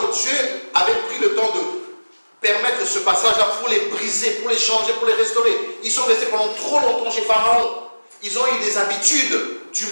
que Dieu avait pris le temps de permettre ce passage-là pour les briser, pour les changer, pour les restaurer. Ils sont restés pendant trop longtemps chez Pharaon. Ils ont eu des habitudes du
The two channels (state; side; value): inverted; both; correlation -1.00